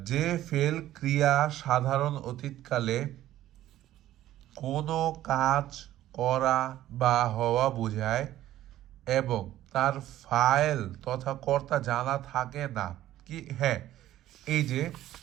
যে ফেল ক্রিয়া সাধারণ অতীতকালে কোনো কাজ করা বা হওয়া বোঝায় এবং তার ফাইল তথা কর্তা জানা থাকে না, কি হ্যাঁ, এই যে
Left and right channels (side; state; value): left; quieter; 13.7 dB